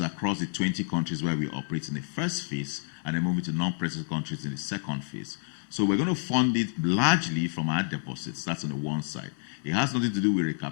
across the 20 countries where we operate in the first phase, and then moving to non-present countries in the second phase. So we're going to fund it largely from our deposits. That's on the one side. It has nothing to do with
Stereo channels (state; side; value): silent; right; digital silence